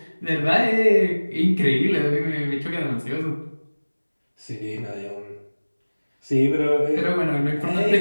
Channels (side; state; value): both; inverted; correlation -1.00